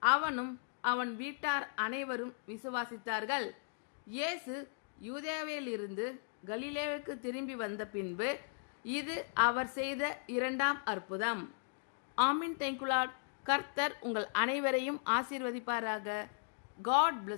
அவனும் அவன் வீட்டார் அனைவரும் விசுவாசித்தார்கள். இயேசு யூதேயாவிலிருந்து கலிலேயாவுக்கு திரும்பி வந்த பின்பு இது அவர் செய்த 2ஆம் அற்புதம். ஆமீன். Thank you Lord. கர்த்தர் உங்கள் அனைவரையும் ஆசீர்வதிப்பாராக. God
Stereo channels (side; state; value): right; silent; digital silence